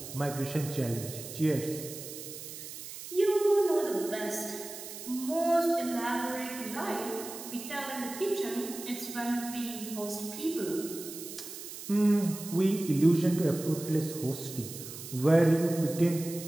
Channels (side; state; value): right; noise; hiss, 11 dB below the sound